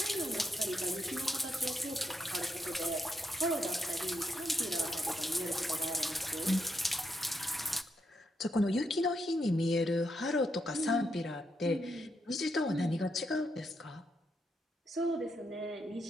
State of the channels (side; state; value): both; normal; correlation 0.80